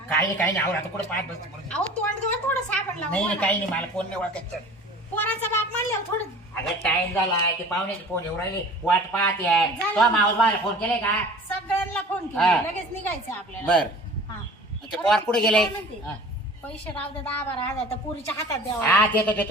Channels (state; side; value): normal; both; correlation 0.43